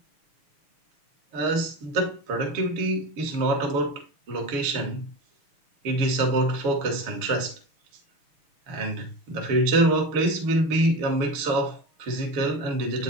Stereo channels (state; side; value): late; left; 7.1 ms